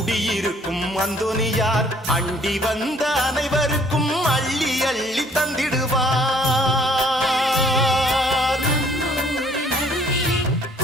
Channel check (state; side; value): normal; both; correlation 0.59